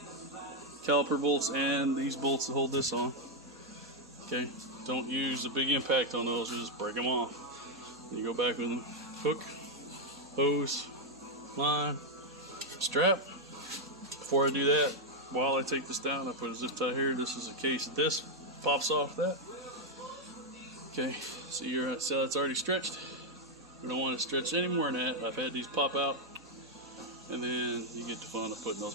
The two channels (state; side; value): normal; both; correlation 0.00